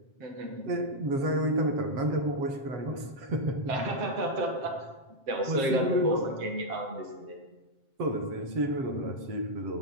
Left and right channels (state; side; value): late; left; 7.5 ms